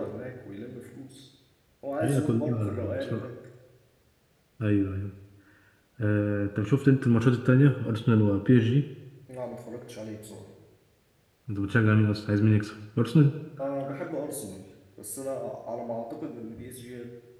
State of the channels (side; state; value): both; identical; correlation 1.00